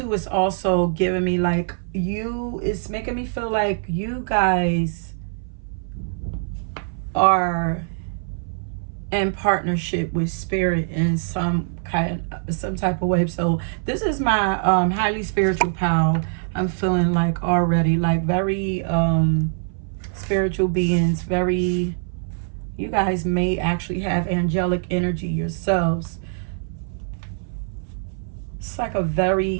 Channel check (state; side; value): silent; left; 62 dB below the other